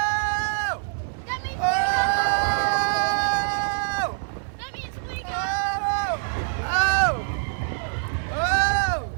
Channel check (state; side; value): silent; left; 62 dB below the other